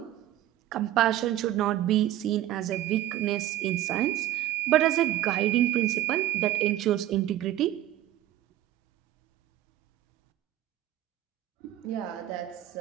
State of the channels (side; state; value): left; quieter; 13.4 dB